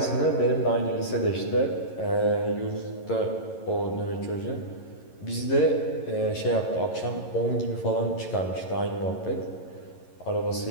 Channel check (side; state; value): right; late; 11 ms